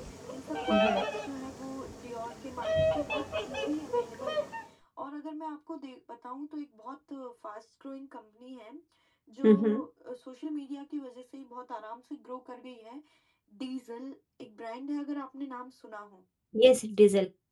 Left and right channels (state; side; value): identical; both; correlation 1.00